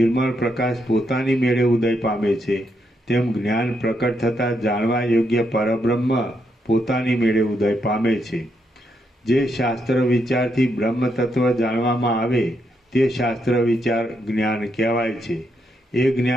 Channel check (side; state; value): both; normal; correlation 0.79